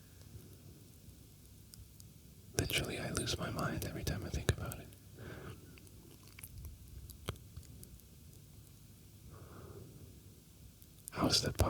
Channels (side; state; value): both; identical; correlation 1.00